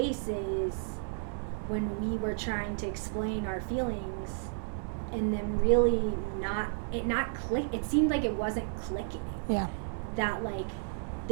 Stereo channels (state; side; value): silent; left; digital silence